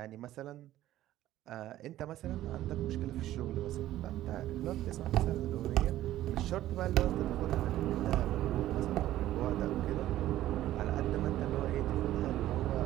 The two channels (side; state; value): left; quieter; 14.0 dB